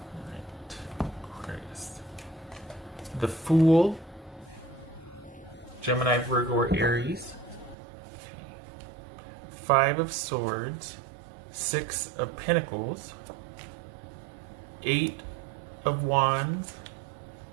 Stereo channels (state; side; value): drops out; left; at 7.8 s